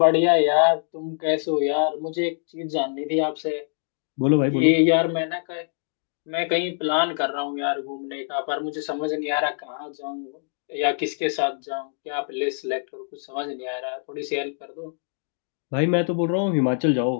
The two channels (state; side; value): silent; right; digital silence